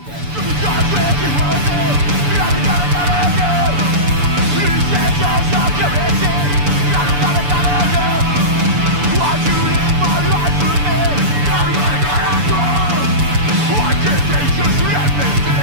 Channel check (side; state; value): left; late; 6.9 ms